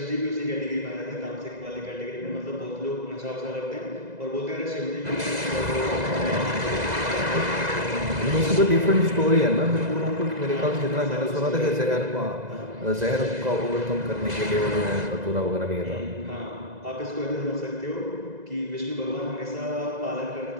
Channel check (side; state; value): left; late; 2.0 ms